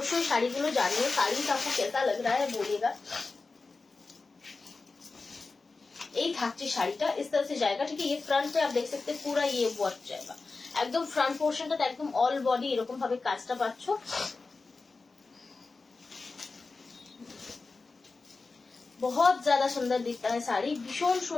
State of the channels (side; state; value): right; quieter; 4.0 dB